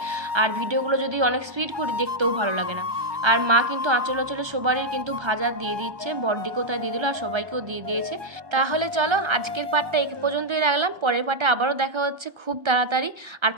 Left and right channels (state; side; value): late; left; 1.3 ms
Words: আর ভিডিওগুলো যদি অনেক স্পিড করি দেখতেও ভালো লাগে না। আর মা কিন্তু আঁচলে সবারই কিন্তু ভাজা দিয়ে দিচ্ছে, বড়দিকেও তাই দিয়ে দিল, আর সবাইকেও দিয়ে দিয়েছে। তাহলে চলো আজকের পার্টটা এই পর্যন্তই রাখলাম, পরের পার্টে আবারও দেখা হচ্ছে খুব তাড়াতাড়ি। আর